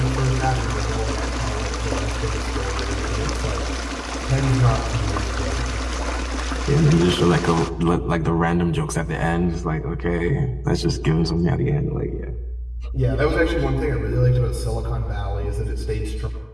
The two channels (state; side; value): identical; both; correlation 1.00